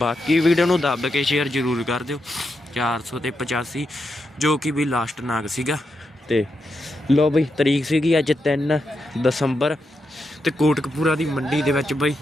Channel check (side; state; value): both; normal; correlation 0.85